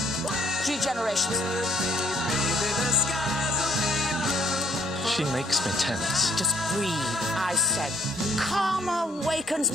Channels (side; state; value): both; normal; correlation 0.63